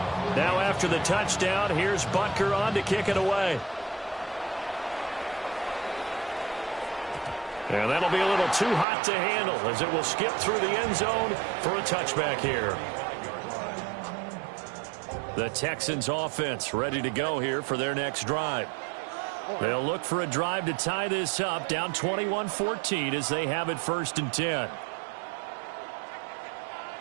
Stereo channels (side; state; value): left; drops out; at 8.8 s